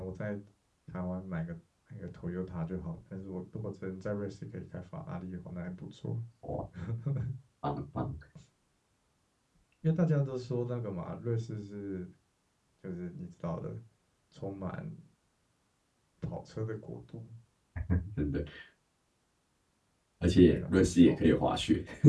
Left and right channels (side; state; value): both; identical; correlation 1.00